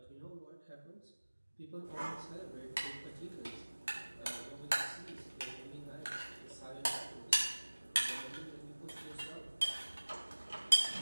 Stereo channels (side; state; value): both; inverted; correlation -1.00